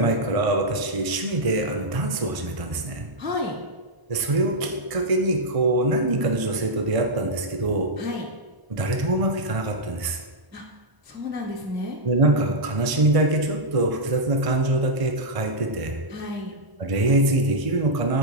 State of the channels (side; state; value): left; late; 1.0 ms